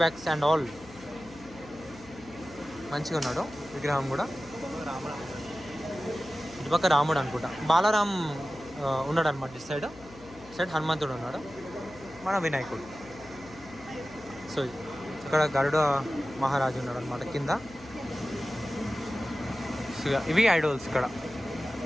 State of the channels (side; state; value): left; noise; hum, 21 dB below the sound